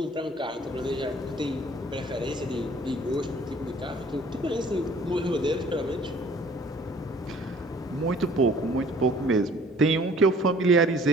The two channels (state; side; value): normal; both; correlation 0.53